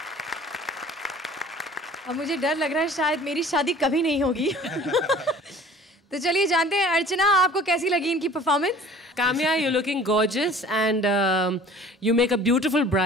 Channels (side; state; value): both; normal; correlation 0.48